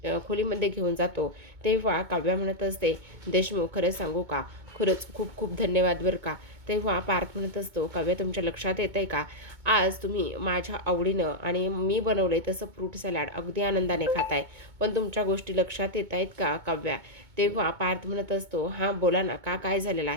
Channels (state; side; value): late; left; 2.2 ms